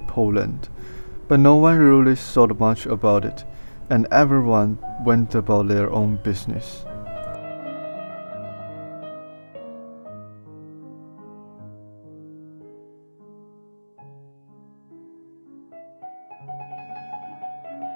Poland, but no one really thought much about it, and everyone went about their own business.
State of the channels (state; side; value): inverted; both; correlation -1.00